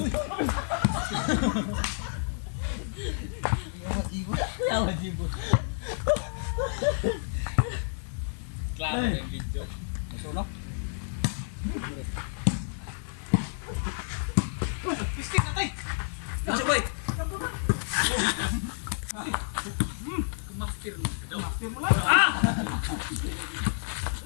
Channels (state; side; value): silent; right; digital silence